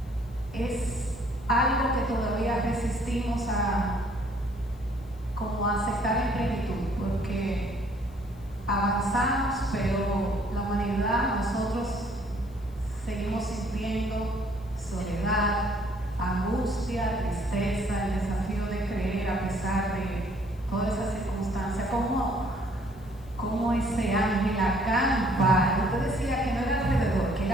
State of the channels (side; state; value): left; noise; hiss, 30 dB below the sound